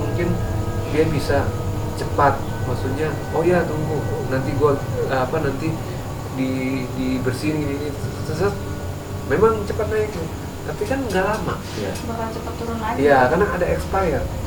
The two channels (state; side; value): identical; both; correlation 1.00